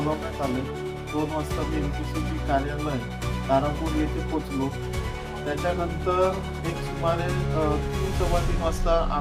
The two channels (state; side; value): identical; both; correlation 1.00